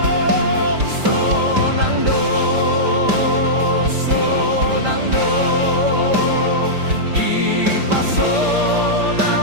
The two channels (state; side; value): late; left; 5.1 ms